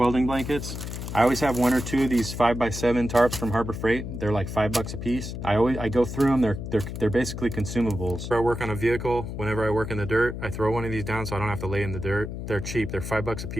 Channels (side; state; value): left; noise; hum, 7 dB below the sound